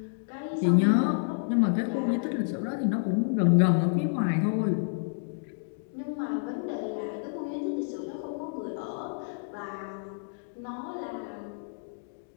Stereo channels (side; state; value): right; silent; digital silence